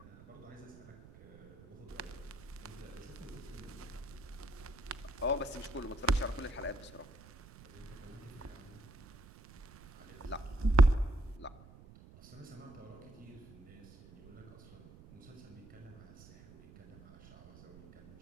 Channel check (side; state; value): right; noise; rumble, 20 dB below the sound